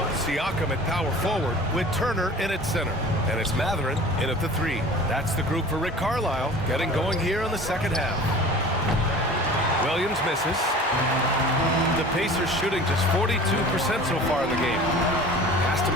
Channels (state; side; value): normal; both; correlation 0.42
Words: Siakam at power forward with Turner in at center. And it's Mathurin in at the 3. That's the group for Rick Carlisle getting going here in the second half. Williams misses. The Pacers shooting just 42% so far in the game. Pass to